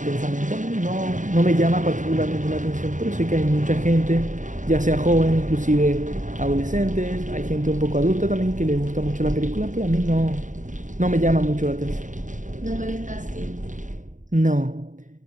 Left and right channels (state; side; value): late; left; 0.37 ms